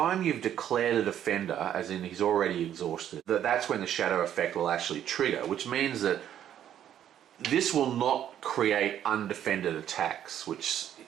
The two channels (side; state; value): left; quieter; 10.5 dB